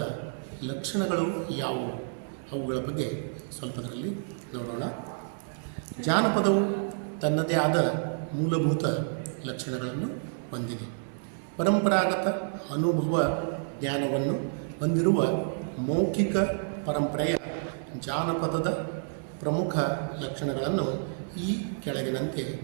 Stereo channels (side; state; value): left; silent; digital silence